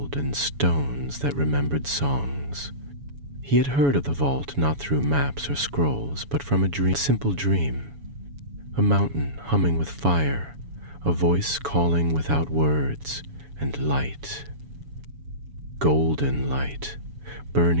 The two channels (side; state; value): left; late; 7.1 ms